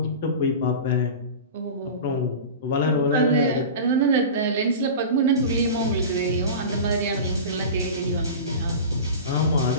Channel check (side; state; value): both; inverted; correlation -0.31